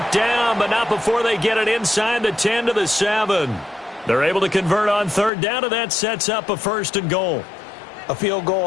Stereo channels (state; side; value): drops out; right; at 5.3 s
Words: down, but not before they get it inside the 10 to the 7. They're able to convert on 3rd down, and that sets up a 1st and goal. A field